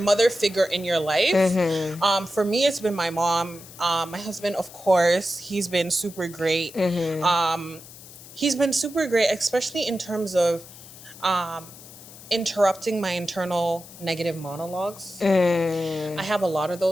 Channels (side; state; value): left; noise; hiss, 18 dB below the sound